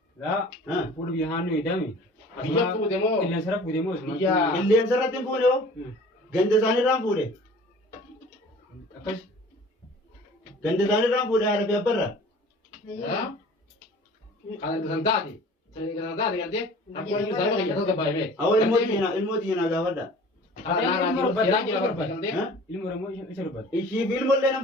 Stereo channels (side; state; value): both; normal; correlation 0.46